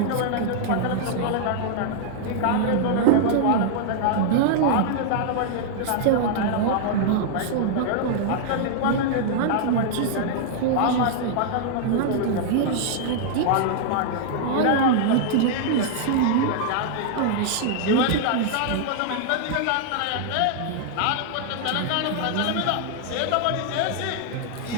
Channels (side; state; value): both; different; correlation -0.01